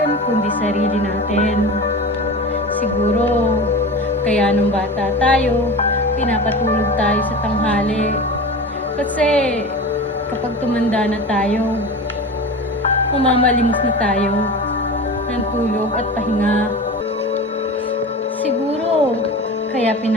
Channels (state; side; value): normal; both; correlation 0.31